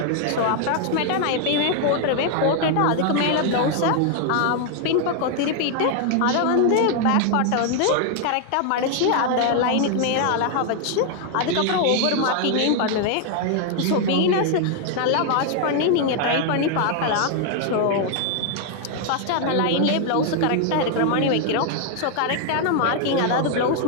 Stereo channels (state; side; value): different; both; correlation 0.00